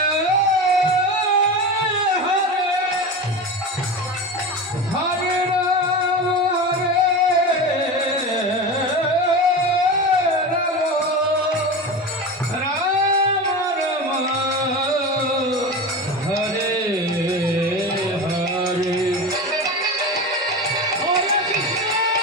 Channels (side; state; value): both; normal; correlation 0.25